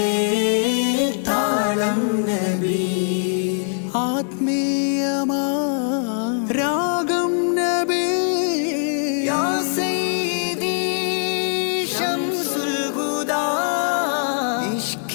താളം നബി ആത്മീയമാ രാഗം നബി യാ സയ്യിദി ശംസുൽ ഹുദാ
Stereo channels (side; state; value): right; silent; digital silence